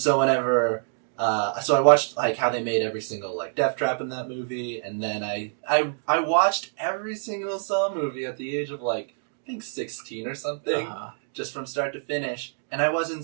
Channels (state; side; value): silent; left; digital silence